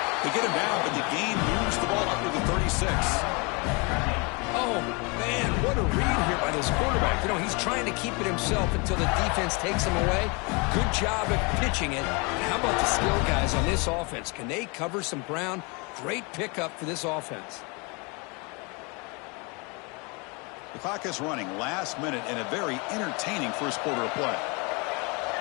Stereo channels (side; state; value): right; quieter; 30.2 dB